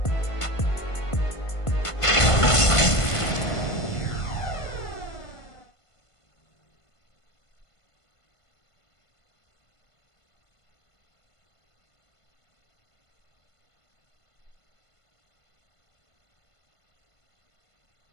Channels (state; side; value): late; right; 1.5 ms